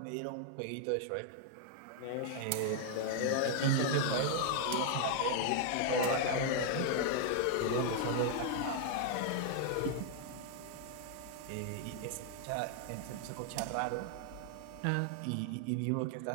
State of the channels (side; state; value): both; different; correlation 0.00